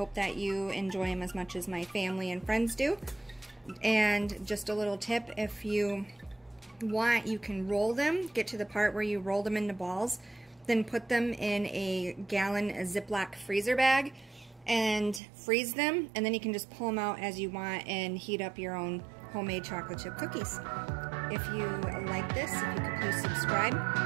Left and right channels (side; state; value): left; drops out; at 15.2 s